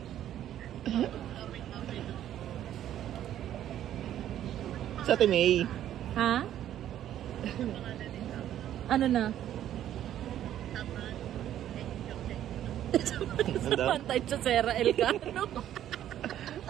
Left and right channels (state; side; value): quieter; left; 11.5 dB